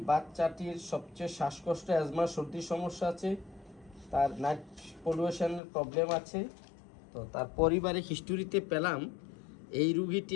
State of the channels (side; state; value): right; drops out; at 5.6 s